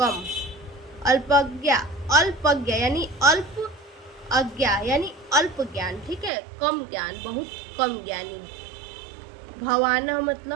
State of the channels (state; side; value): drops out; left; at 6.3 s